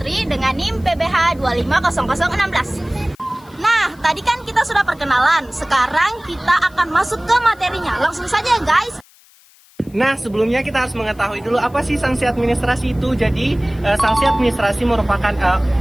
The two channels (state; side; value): noise; left; hiss, 28 dB below the sound